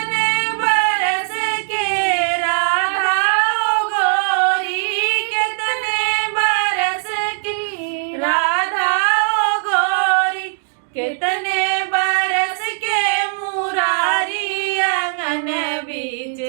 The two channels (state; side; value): silent; left; digital silence